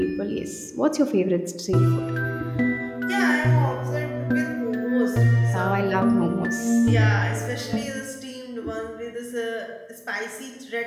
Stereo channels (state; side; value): identical; both; correlation 1.00